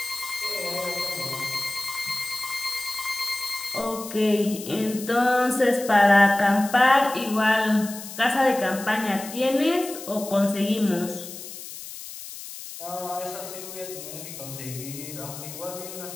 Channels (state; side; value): noise; left; hiss, 12 dB below the sound